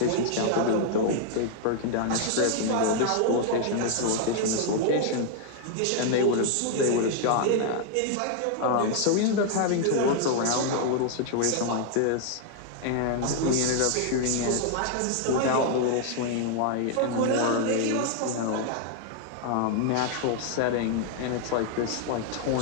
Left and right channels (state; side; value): different; both; correlation -0.01